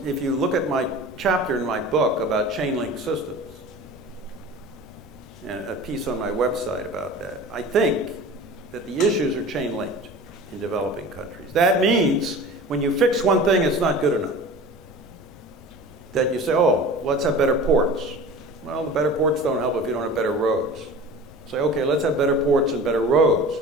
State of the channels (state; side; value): normal; both; correlation 0.38